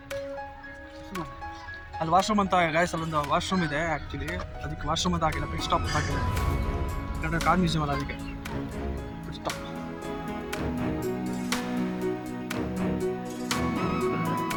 ಅಲ್ಲಿ ವಾಶ್ರೂಮ್ ಅಂತ ಗಾಯ್ಸ್ ಅಲ್ಲೊಂದು ವಾಶ್ರೂಮ್ ಇದೆ ಆ್ಯಕ್ಚುಲಿ. ಅದಕ್ಕೆ ವಾಶ್ರೂಮ್ ಅಂತ ಆಗಿಲ್ಲ, ಪಿಟ್ ಸ್ಟಾಪ್ ಆಗಿಲ್ಲ. ಯಾಕಂದರೆ ಕಾರ್ ಮ್ಯೂಸಿಯಮ್ ಅಲ್ಲ, ಅದಕ್ಕೆ ಪಿಟ್ ಸ್ಟಾಪ್.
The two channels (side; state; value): both; identical; correlation 1.00